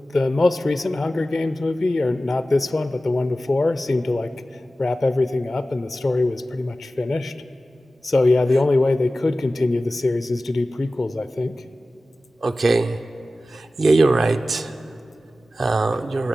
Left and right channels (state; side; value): normal; both; correlation 0.95